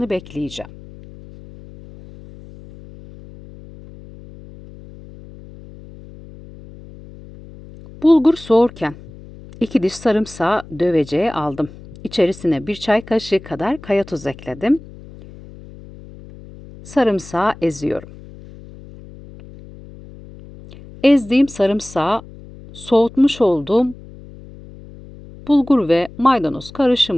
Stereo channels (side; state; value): left; noise; hum, 19 dB below the sound